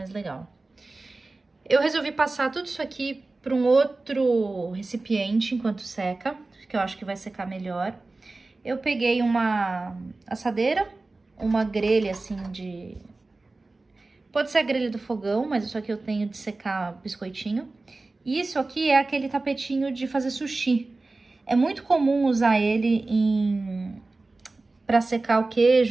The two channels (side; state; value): left; quieter; 3.3 dB